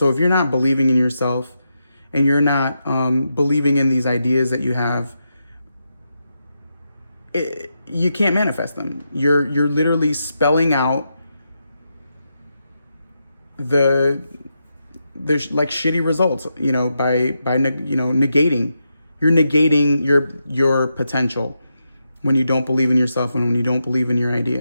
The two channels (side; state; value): both; inverted; correlation -0.85